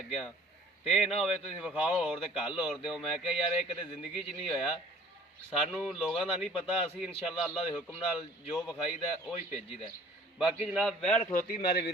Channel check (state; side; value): normal; both; correlation 0.52